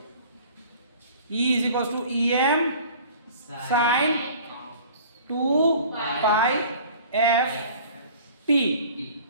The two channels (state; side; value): inverted; both; correlation -0.46